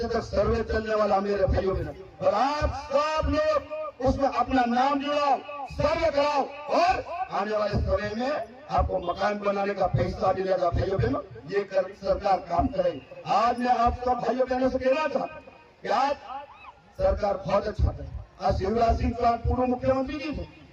तक सर्वे चलने वाला मेरे भाइयों में। और आप सब लोग उसमें अपना नाम जुड़ाओ, सर्वे कराओ और आने वाले समय में आपको मकान बनाने का पैसा मिलेगा भाइयों बहनों। ये सरकार काम करे। आज मैं आप सब भाइयों बहनों से कहना चाहता हूँ कि आज सरकार बहुत अच्छा है। आज शिवराज सिंह चौहान पूर्व मुख्यमंत्री जी थे,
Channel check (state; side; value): identical; both; correlation 1.00